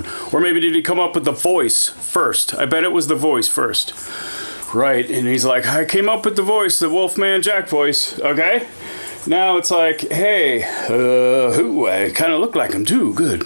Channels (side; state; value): both; inverted; correlation -1.00